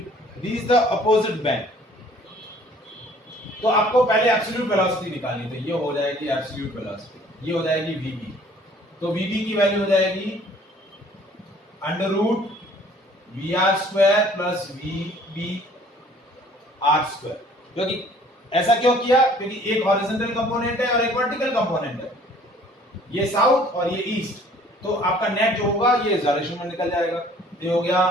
reach the opposite bank. तो आपको पहले absolute velocity निकालनी, तो ये हो जाएगी absolute velocity, ये हो जाएगी वीबी। तो वीबी की वैल्यू हो जाएगी under root v r square plus v B r square. क्योंकि ऐसा क्यों किया? क्योंकि एक हॉरिजॉन्टल कंपोनेंट है और एक वर्टिकल कंपोनेंट है, ये साउथ और ये ईस्ट, तो आपका नेट जो होगा ये इस डायरेक्शन में निकल जाएगा। ये हो गया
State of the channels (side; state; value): both; normal; correlation 0.55